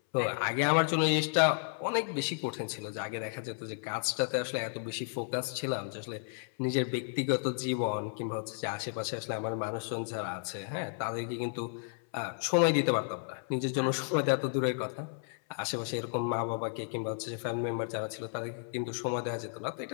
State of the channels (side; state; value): right; silent; 56 dB below the other